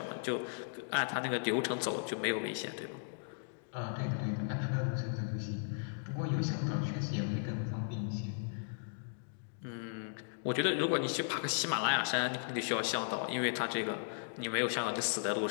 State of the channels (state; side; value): silent; right; digital silence